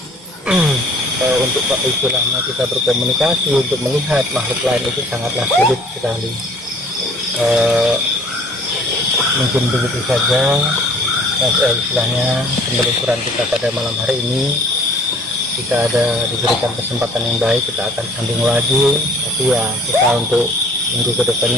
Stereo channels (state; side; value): normal; both; correlation 0.53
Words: untuk istilahnya kita berkomunikasi, untuk melihat makhluk lain itu sangatlah sulit sekali. Mungkin begitu saja istilahnya penelusuran kita pada malam hari ini. Jika ada diberikan kesempatan yang baik, kita akan sambung lagi. Tapi ya, kita untuk minggu